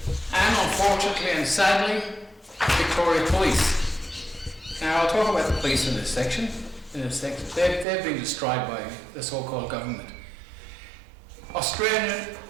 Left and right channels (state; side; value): drops out; left; at 7.9 s